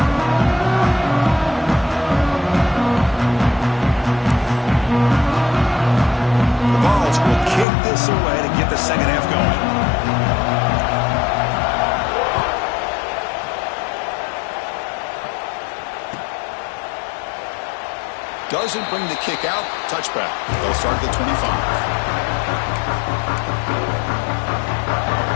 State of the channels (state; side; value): drops out; right; at 7.7 s